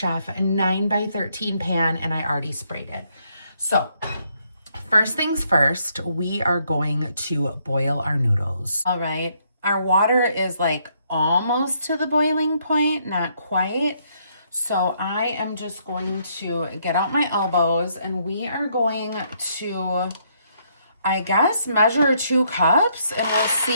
9x13 pan, and I already sprayed it. So first things first, we are going to boil our noodles. All right. Our water is like almost to the boiling point, not quite. So I am just going to get out my elbows, and we are going to I guess measure 2 cups and we'll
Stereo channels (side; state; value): both; inverted; correlation -0.72